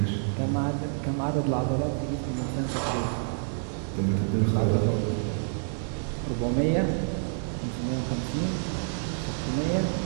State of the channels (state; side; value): silent; left; digital silence